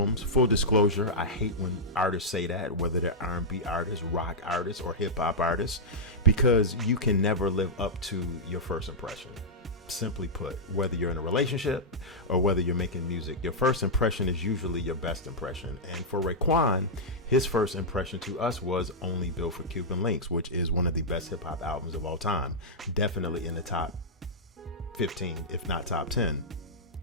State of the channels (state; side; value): normal; both; correlation -0.08